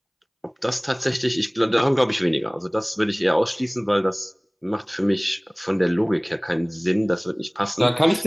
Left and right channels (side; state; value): both; identical; correlation 1.00